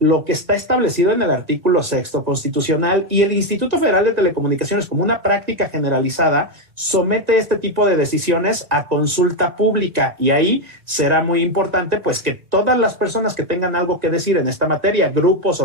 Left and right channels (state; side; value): late; left; 1.8 ms